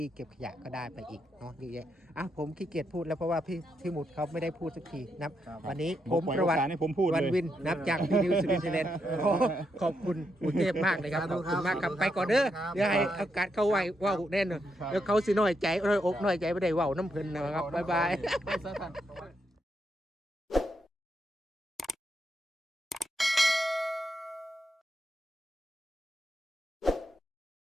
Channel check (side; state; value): both; normal; correlation 0.81